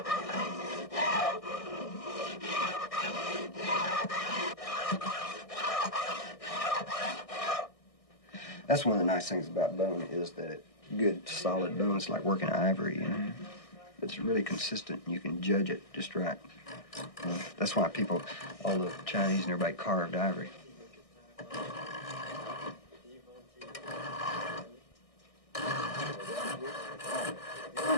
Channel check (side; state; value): right; late; 1.6 ms